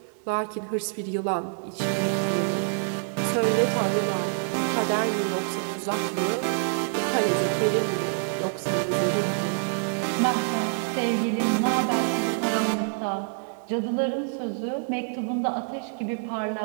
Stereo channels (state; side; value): silent; left; digital silence